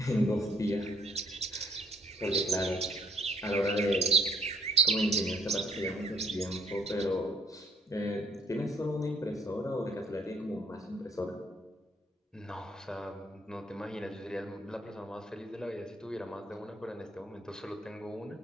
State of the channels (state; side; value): normal; both; correlation 0.63